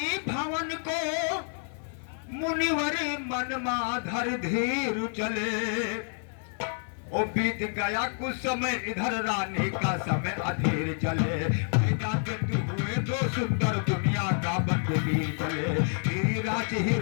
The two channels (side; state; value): right; silent; 59 dB below the other